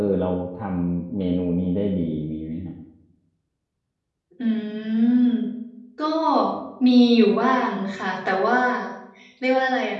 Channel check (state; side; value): identical; both; correlation 1.00